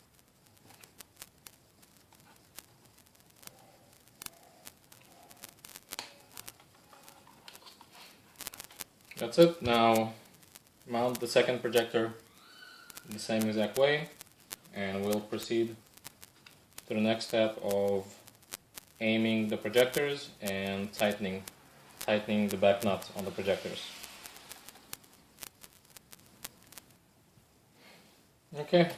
That's it. Now mount the second projector the same exact way, and we'll proceed to the next step of aiming the projectors and tightening the back nut on the projectors. Okay,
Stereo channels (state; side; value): identical; both; correlation 1.00